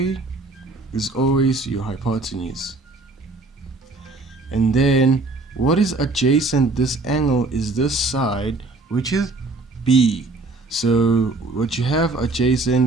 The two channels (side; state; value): left; quieter; 3.4 dB